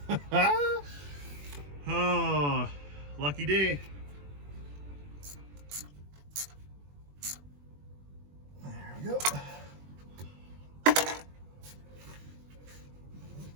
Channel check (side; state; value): left; late; 21 ms